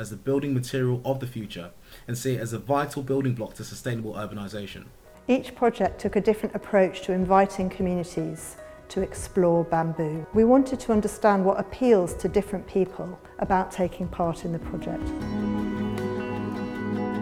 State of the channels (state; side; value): identical; both; correlation 1.00